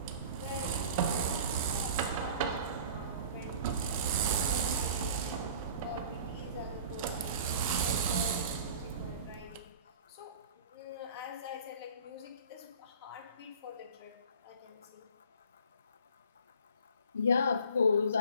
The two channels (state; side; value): inverted; both; correlation -0.44